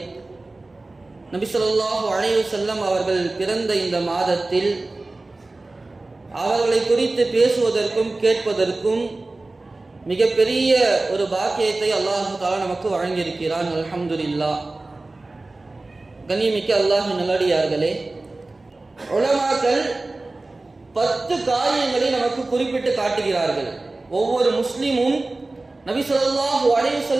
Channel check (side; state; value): left; quieter; 3.1 dB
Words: நபி ஸல்லல்லாஹு அலைஹி வஸல்லம் அவர்கள் பிறந்த இந்த மாதத்தில் அவர்களை குறித்து பேசுவதற்கும் கேட்பதற்கும் மிகப்பெரிய ஒரு பாக்கியத்தை அல்லாஹ் தஆலா நமக்கு வழங்கியிருக்கிறான். அல்ஹம்துலில்லாஹ். கண்ணியமிக்க அல்லாஹ் நல்லடியார்களே, உலமாக்கள் 10 காரியங்களை நமக்கு குறிப்பிட்டு காட்டுகிறார்கள். ஒவ்வொரு முஸ்லிமும் நபி ஸல்லல்லாஹு அலைஹி